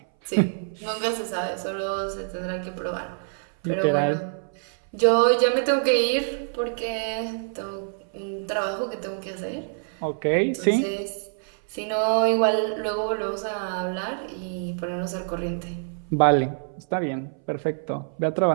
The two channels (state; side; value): silent; left; 59 dB below the other